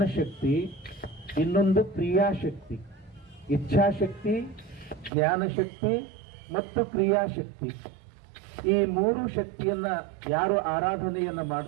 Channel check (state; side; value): drops out; left; at 5.1 s